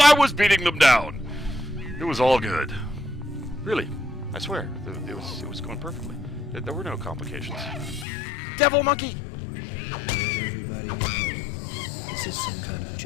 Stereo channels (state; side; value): drops out; right; at 8.1 s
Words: I was beating them down! It was all good. Really, I swear, it was going perfectly. There were no complications. Devil monkey! Let everybody know. Is this some kind of